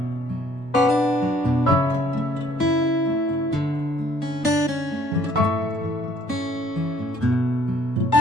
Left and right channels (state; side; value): normal; both; correlation 0.61